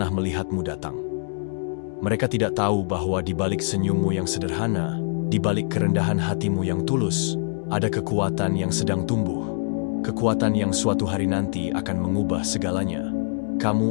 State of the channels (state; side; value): silent; right; digital silence